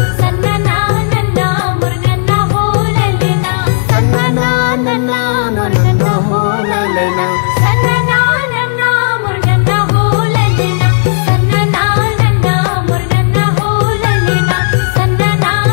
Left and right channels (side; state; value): right; silent; digital silence